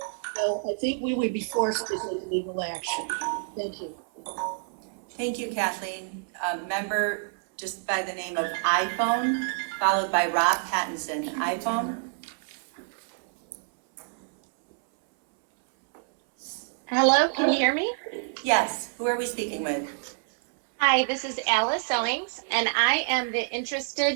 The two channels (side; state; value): left; silent; 60 dB below the other